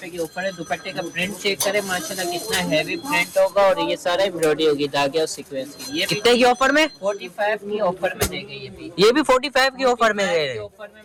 के ऊपर है। दुपट्टे का प्रिंट चेक करें, माशाल्लाह कितना हैवी प्रिंट होगा। और ये सारा एम्ब्रॉयडरी होगी धागे और सीक्वेंस की। ये कितने की ऑफर में? 45 की ऑफर में देंगे। ये भी 45 की ऑफर में दे रहे हैं। ऑफर में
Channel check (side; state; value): both; identical; correlation 1.00